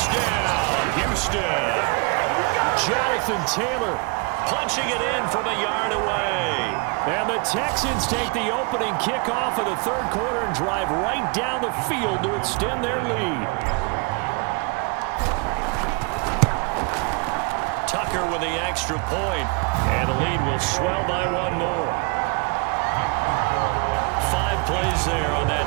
Houston. Jonathan Taylor punching it in from a yard away. And the Texans take the opening kickoff of the 3rd quarter and drive right down the field to extend their lead. Tucker with the extra point. And the lead will swell by 1 more. 5 plays there on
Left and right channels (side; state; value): left; quieter; 32.1 dB